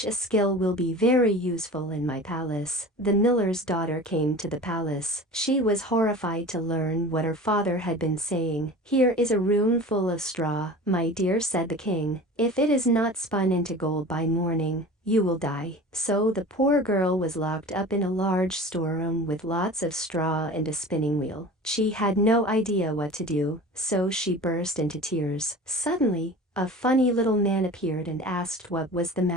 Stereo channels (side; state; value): both; normal; correlation 0.37